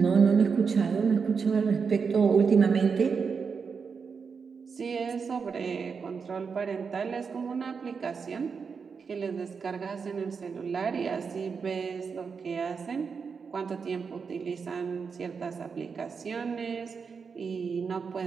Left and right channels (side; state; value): left; quieter; 5.6 dB